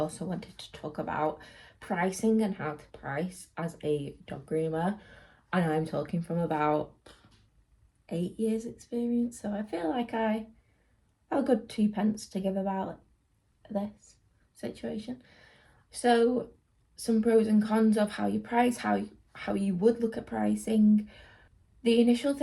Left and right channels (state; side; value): identical; both; correlation 1.00